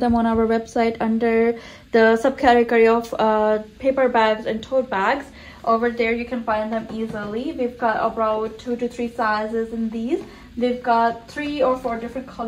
them on our website under the subcategory of paper bags and tote bags. Over there you can find them easily. We've got about 2 to 3 sizes in these. We've got 3 or 4 different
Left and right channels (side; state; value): both; identical; correlation 1.00